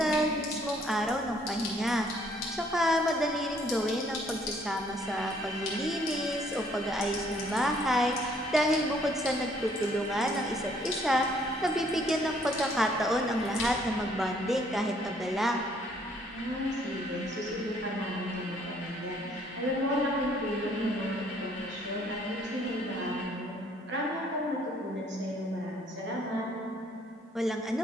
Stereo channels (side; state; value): both; normal; correlation 0.63